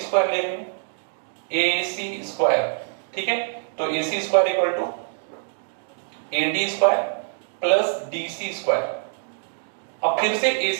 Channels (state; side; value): silent; left; digital silence